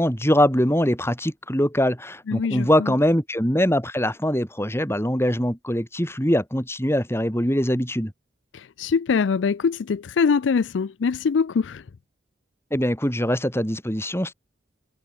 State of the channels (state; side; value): normal; both; correlation 0.72